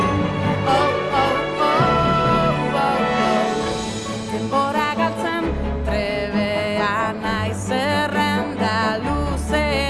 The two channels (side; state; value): both; identical; correlation 1.00